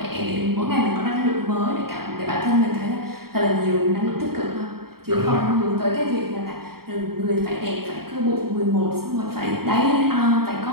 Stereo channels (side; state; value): left; late; 0.94 ms